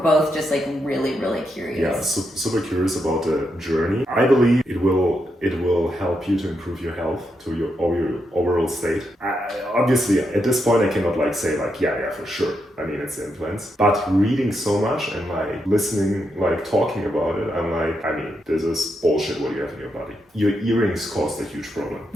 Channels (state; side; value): normal; both; correlation 0.82